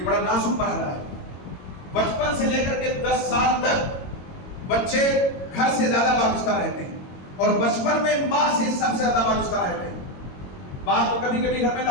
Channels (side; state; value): right; late; 22 ms